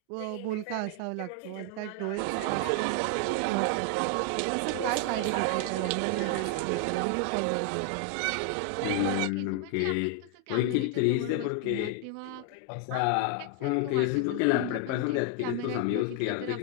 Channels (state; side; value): different; both; correlation 0.00